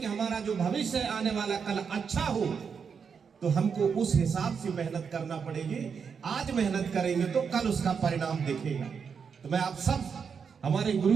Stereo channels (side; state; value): left; quieter; 6.3 dB